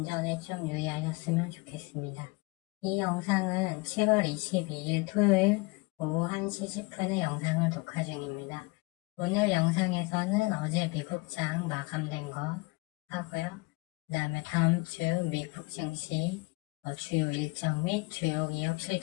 좀 유의하셨으면 좋겠습니다. 이 영상은 7월 22일 토요일 오후 1시 10분에 영상을 녹화 중입니다. 오늘 영상에서는 어제 미국장 마감된 거 하고요. 그 다음에 다음 주 미국 증시 주요 일정 및 주요 기업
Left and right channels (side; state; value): right; quieter; 26.3 dB